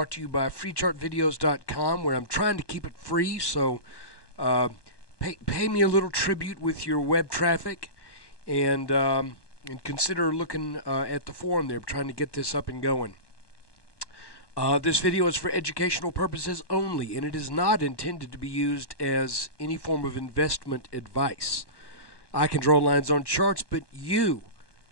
to you by FreeChartVideos.com, where I'm trying to keep it free, so pay me a little tribute with your web traffic, and consider looking at the forum there, trying to get this up and going. This video is for educational purposes only, and it is not intended to be used as any form of investment advice. I can draw lines on charts, but you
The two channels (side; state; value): right; late; 1.2 ms